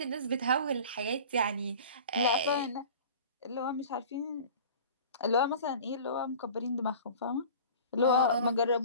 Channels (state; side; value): inverted; both; correlation -0.41